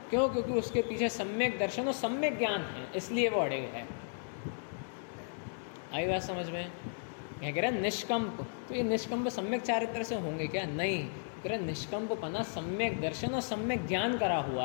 क्यों? क्योंकि उसके पीछे सम्यक दर्शन और सम्यक ज्ञान है, इसलिए वो अड़े है। आई बात समझ में? क्या कह रहे हैं निष्कंप? तो ये निष्कंप सम्यक चारित्र से होंगे क्या? नहीं, कह रहे निष्कंप पना सम्यक दर्शन और सम्यक ज्ञान करा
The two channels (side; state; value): right; silent; digital silence